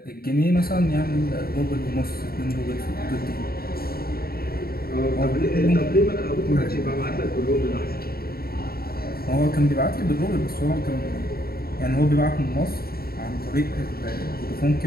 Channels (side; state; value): right; late; 0.44 ms